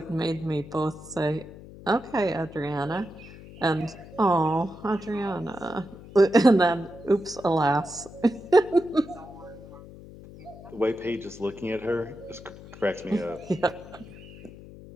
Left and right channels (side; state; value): left; noise; hum, 17 dB below the sound